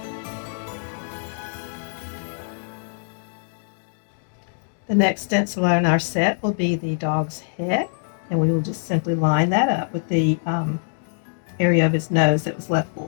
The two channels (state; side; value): silent; right; digital silence